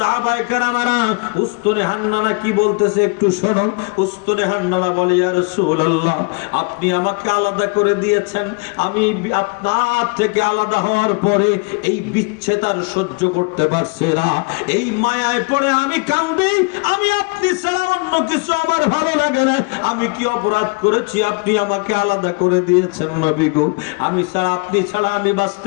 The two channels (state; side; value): quieter; right; 30.9 dB